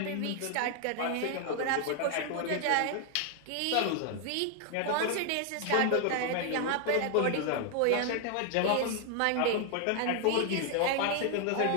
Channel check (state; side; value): different; both; correlation 0.00